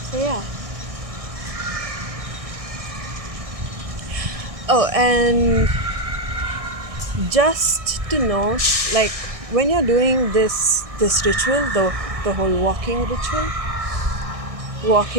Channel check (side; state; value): left; late; 1.6 ms